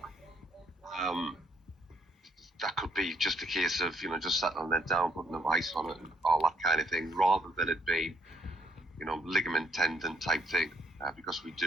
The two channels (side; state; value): both; normal; correlation 0.68